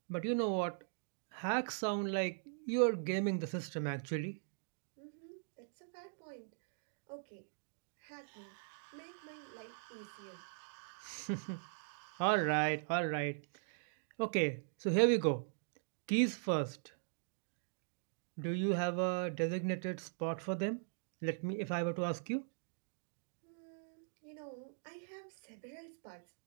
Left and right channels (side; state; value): left; silent; digital silence